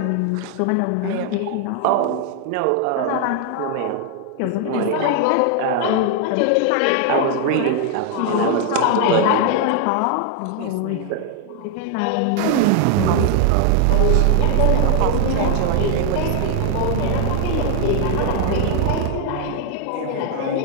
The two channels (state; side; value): different; both; correlation 0.00